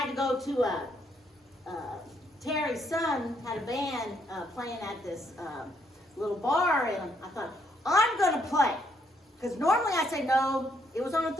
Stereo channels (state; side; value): normal; both; correlation 0.72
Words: to go to Terry's son had a band playing at this little bar, and I thought, I'm going to play. Because normally I say no. It was on a